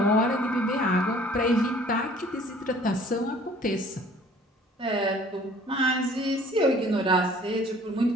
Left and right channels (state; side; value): normal; both; correlation 0.53